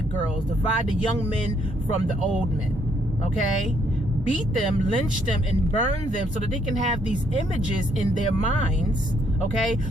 girls, divide the young men from the old men. Okay, beat them, lynch them, and burn them so that they can have these images in their minds, okay,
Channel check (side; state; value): both; normal; correlation 0.70